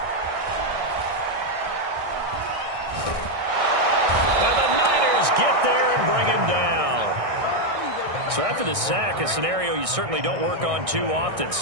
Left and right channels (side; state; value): left; late; 1.6 ms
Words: And the Niners get there and bring him down. So after the sack, a scenario you certainly don't work on too often.